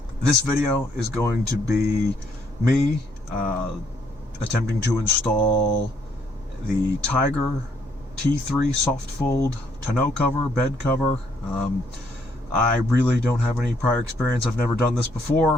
This video is going to be me attempting to install the Tyger T3 soft fold tonneau cover, bed cover. I really don't have any prior experience. I've never done this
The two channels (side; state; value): both; normal; correlation 0.70